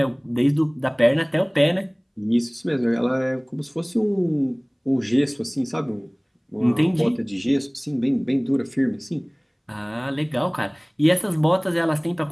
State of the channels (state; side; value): identical; both; correlation 1.00